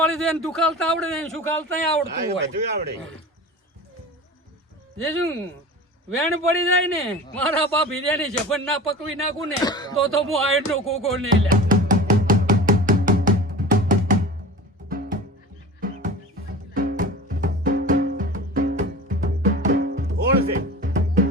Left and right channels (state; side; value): normal; both; correlation 0.35